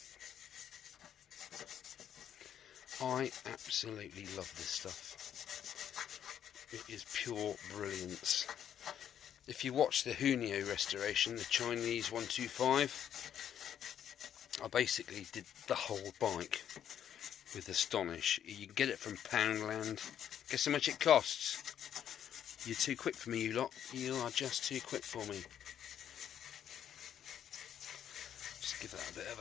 I absolutely love this stuff. It is pure brilliance. If you watch the Hunio restoration, the Chinese 125, I basically did the whole bike with Astonish. You can get it from Poundland. Guess how much it costs? You're too quick for me, you lot. You are just too quick for me. Just give that a bit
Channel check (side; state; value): right; quieter; 9.7 dB